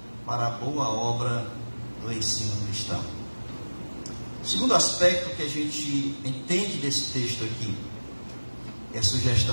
para a boa obra do ensino cristão. O segundo aspecto que a gente entende desse texto aqui, é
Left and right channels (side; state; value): both; inverted; correlation -1.00